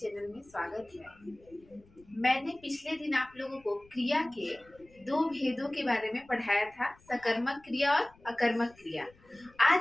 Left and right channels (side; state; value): left; noise; rumble, 28 dB below the sound